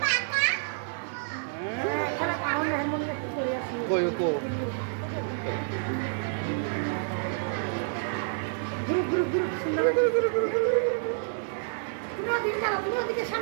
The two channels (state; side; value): silent; left; digital silence